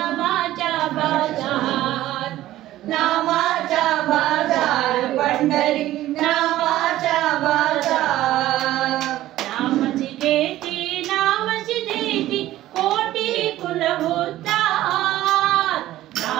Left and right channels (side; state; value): left; quieter; 14.7 dB